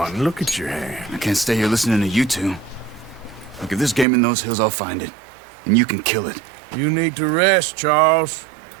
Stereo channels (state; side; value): drops out; left; at 4.0 s